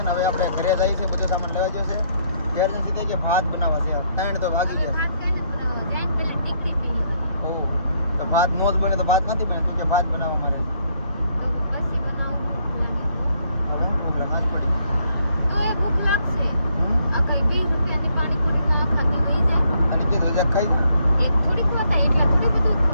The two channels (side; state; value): both; inverted; correlation -0.71